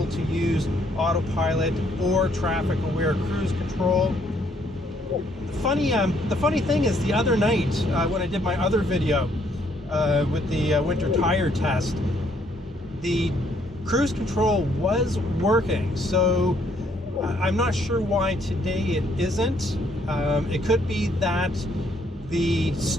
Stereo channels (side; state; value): both; normal; correlation 0.68